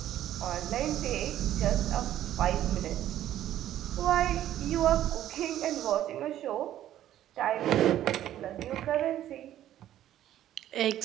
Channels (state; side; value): quieter; left; 12.3 dB